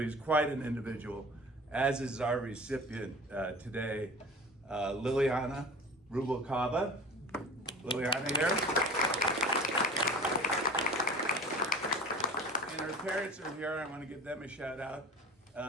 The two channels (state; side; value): normal; both; correlation 0.39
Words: quite an individual, as is our recipient today, Liliana Rubalcaba. Liliana here. And her parents are here. I want to give them a shout out.